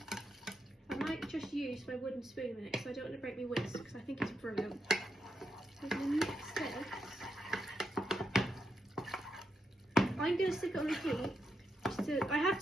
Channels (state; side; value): normal; both; correlation 0.83